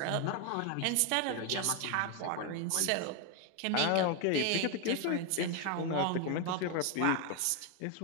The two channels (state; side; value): different; both; correlation 0.01